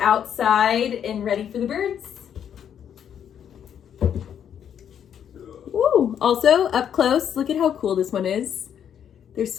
and ready for the birds. Ooh, also up close, look at how cool this one is. There's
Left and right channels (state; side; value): quieter; right; 8.9 dB